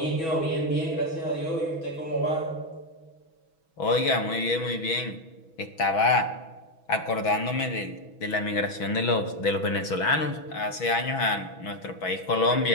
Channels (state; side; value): late; right; 6.2 ms